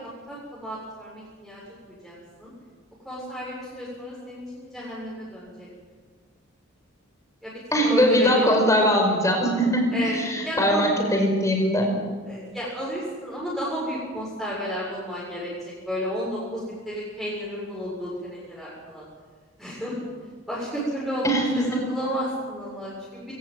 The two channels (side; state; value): both; normal; correlation 0.40